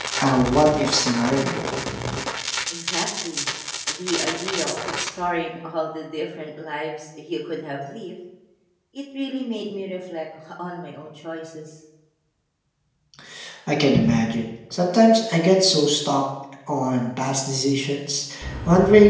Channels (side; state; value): both; identical; correlation 1.00